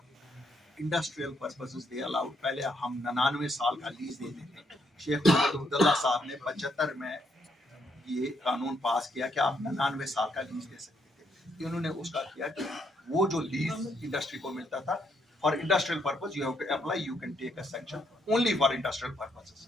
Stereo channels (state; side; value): normal; both; correlation 0.74